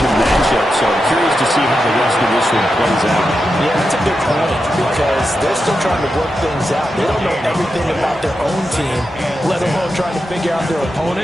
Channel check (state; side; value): normal; both; correlation 0.88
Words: matchup. So I'm curious to see how the rest of this one plays out. Yeah, that's a good point because they're still trying to work things out. They don't know everything about their own team, let alone trying to figure out their